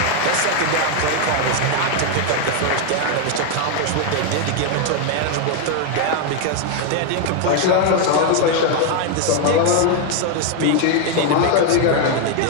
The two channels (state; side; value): different; both; correlation 0.01